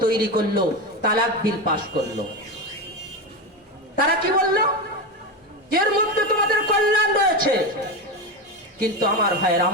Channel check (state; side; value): normal; both; correlation 0.17